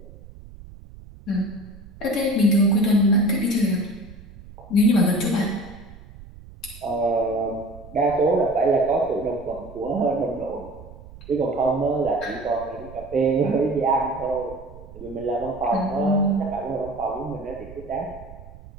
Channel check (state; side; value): noise; right; rumble, 18 dB below the sound